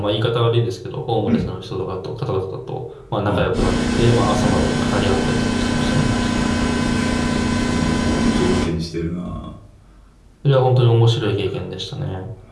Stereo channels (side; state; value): both; identical; correlation 1.00